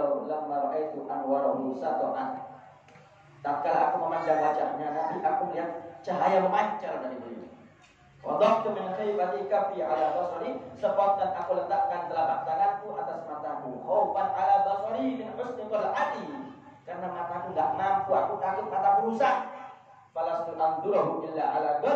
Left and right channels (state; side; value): identical; both; correlation 1.00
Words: lamma ra'aitu anwarahu sata'an. Tatkala aku memandang wajahnya Nabi, aku melihat cahaya memancar dari beliau. Wadahtu min khaybati kafi ala basari, spontan aku letakkan telapak tanganku atas mataku. Khaufan ala basari min husni qal'ati, karena mataku enggak mampu, aku takut mataku rusak. Falastu andurahu illa ala